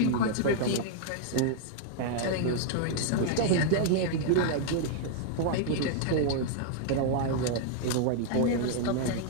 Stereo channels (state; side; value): different; both; correlation -0.01